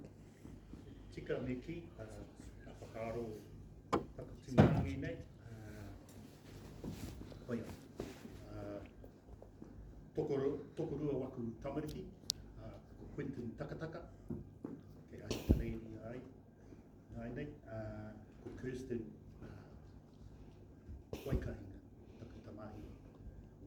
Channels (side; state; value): both; identical; correlation 1.00